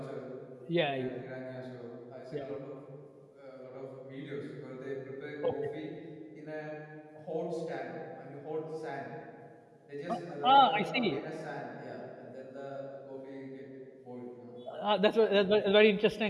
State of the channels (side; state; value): both; identical; correlation 1.00